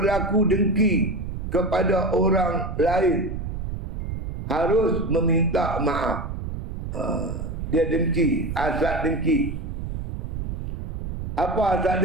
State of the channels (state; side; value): noise; right; rumble, 5 dB below the sound